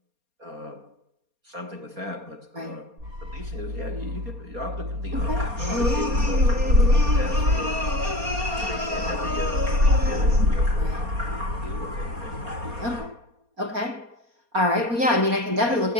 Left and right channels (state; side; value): late; left; 4.2 ms